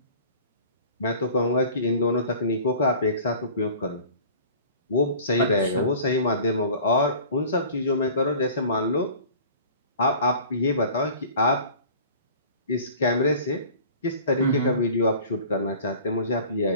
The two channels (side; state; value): both; inverted; correlation -0.45